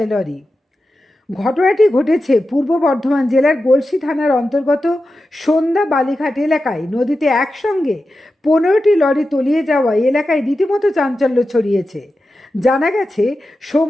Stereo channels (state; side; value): normal; both; correlation 0.91